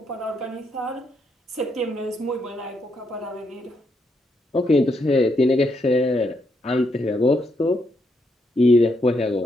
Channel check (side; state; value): both; normal; correlation 0.78